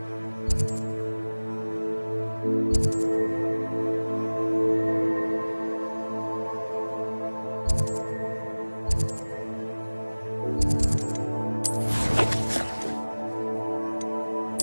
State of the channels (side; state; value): both; inverted; correlation -1.00